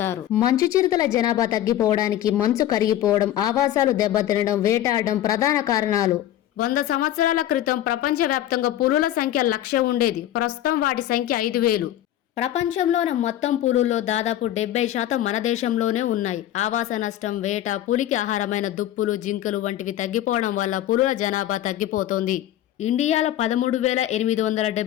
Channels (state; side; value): quieter; right; 12.6 dB